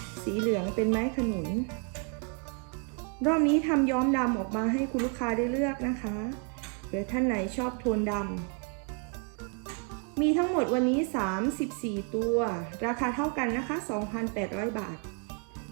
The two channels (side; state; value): left; quieter; 37.2 dB